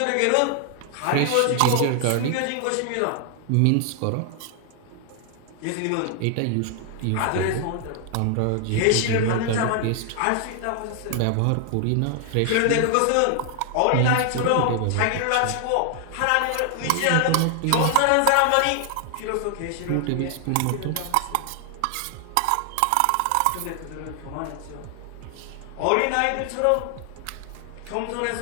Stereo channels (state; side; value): different; both; correlation 0.00